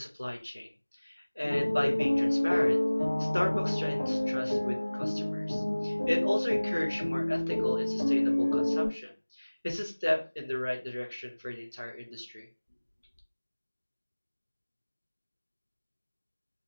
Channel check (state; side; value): inverted; both; correlation -1.00